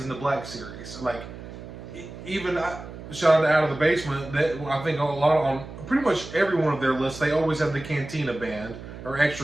in the Black Series. Like, even shout out to Out of the Basement, that I think on pretty much every one of their lists, they always have the Cantina band or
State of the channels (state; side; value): noise; right; hum, 13 dB below the sound